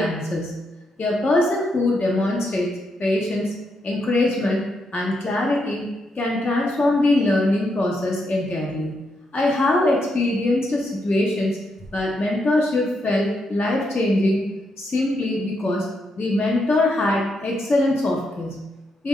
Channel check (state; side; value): normal; both; correlation 0.81